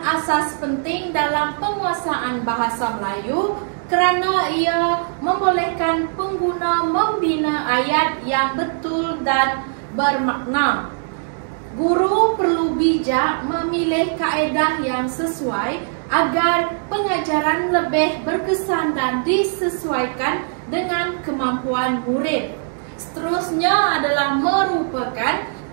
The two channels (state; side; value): silent; left; digital silence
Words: asas penting dalam penguasaan bahasa Melayu kerana ia membolehkan pengguna membina ayat yang betul dan bermakna. Guru perlu bijak memilih kaedah yang sesuai agar pengajaran lebih berkesan dan disesuaikan dengan kemampuan murid. Seterusnya adalah merupakan